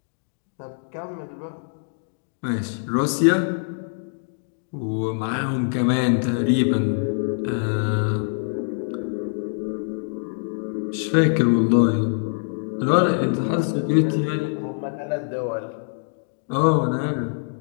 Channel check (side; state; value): right; silent; digital silence